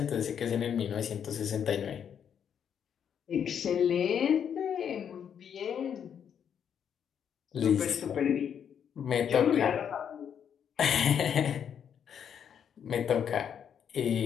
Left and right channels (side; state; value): right; quieter; 8.2 dB